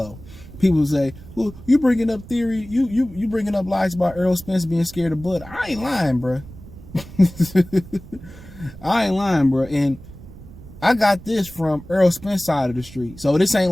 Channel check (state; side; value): noise; right; rumble, 17 dB below the sound